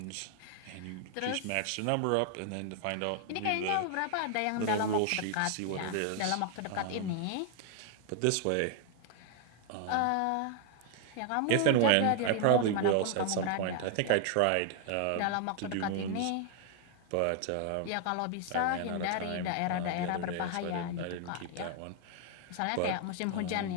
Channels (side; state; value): both; different; correlation 0.00